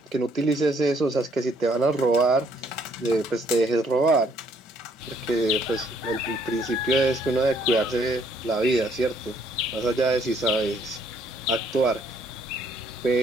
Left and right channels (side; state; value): both; normal; correlation 0.66